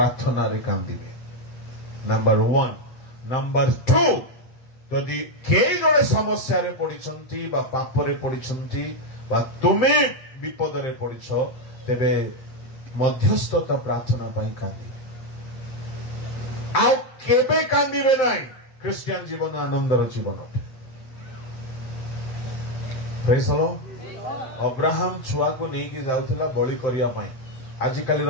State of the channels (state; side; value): late; right; 7.7 ms